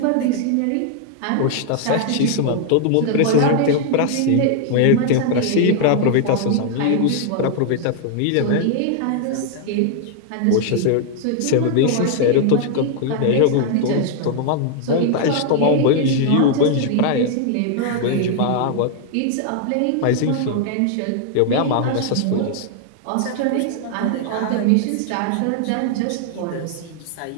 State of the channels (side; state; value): both; different; correlation 0.00